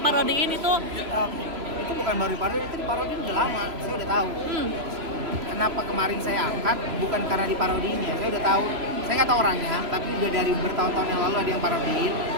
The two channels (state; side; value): late; left; 3.0 ms